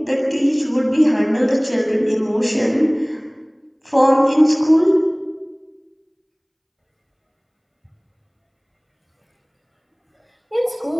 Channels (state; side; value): identical; both; correlation 1.00